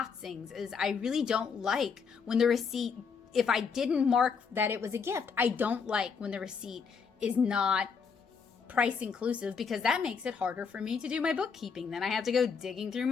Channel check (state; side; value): quieter; right; 5.8 dB